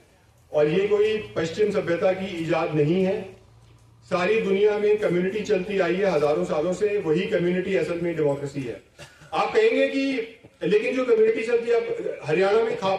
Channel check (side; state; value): both; identical; correlation 1.00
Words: और ये कोई पश्चिम सभ्यता की इजाद नहीं है। सारी दुनिया में कम्युनिटी चलती आई है हजारों सालों से, वही कम्युनिटी असल में डेमोक्रेसी है। आप कहेंगे कि लेकिन जो कम्युनिटी चलती है, अब हरियाणा में